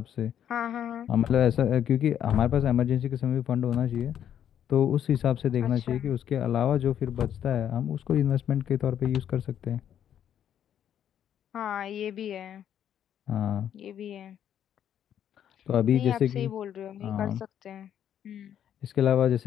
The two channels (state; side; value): quieter; right; 9.8 dB